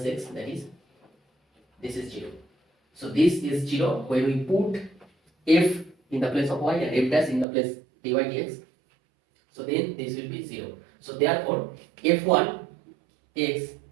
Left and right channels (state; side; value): drops out; left; at 7.5 s